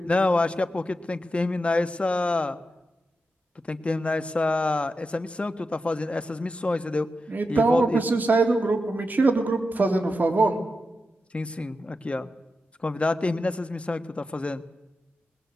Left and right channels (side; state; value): both; normal; correlation 0.89